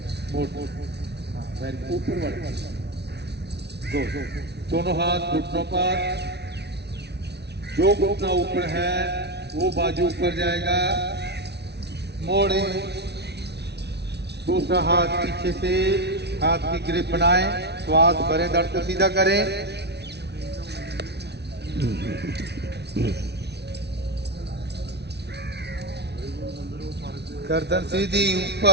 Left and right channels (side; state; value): left; late; 0.49 ms